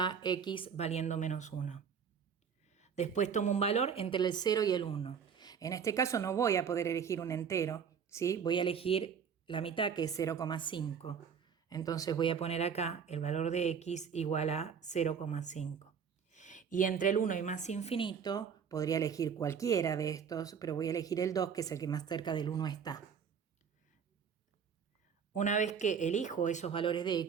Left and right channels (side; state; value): left; quieter; 6.9 dB